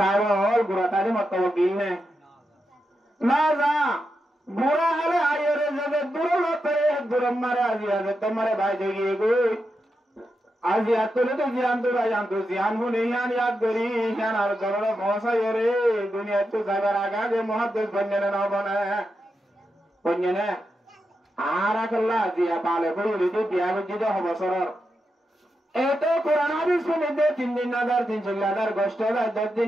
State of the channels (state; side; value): normal; both; correlation 0.87